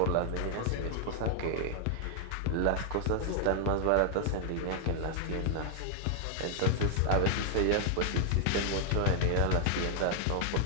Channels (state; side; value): different; both; correlation 0.00